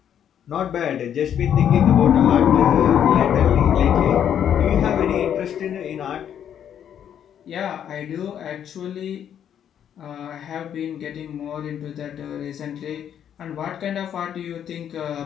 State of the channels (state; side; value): quieter; right; 9.3 dB